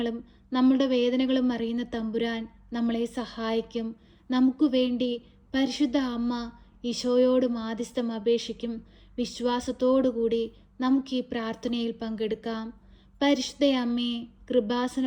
നമ്മുടെ വേദനകളും അറിയുന്ന തമ്പുരാൻ നമ്മളെ സഹായിക്കും. നമുക്ക് വേണ്ടി പരിശുദ്ധ അമ്മ ഈശോയോട് മാധ്യസ്ഥം അപേക്ഷിക്കും. വിശ്വാസത്തോടുകൂടി നമുക്ക് ഈ പ്രാർത്ഥനയിൽ പങ്കെടുക്കാം. പരിശുദ്ധ അമ്മേ, കൃപാസന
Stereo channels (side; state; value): both; identical; correlation 1.00